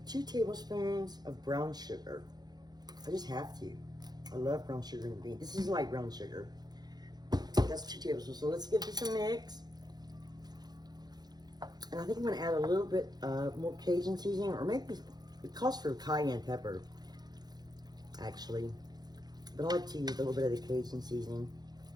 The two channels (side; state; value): left; late; 0.19 ms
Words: 2 tablespoons of brown sugar. I just have to. I love brown sugar in beans. This is light brown sugar. That's 2 tablespoons. So let's give this a mix. And I think I'm going to add a little bit more Cajun seasoning, or maybe it calls for cayenne pepper, actually. But I like to use a little bit of the Cajun seasoning.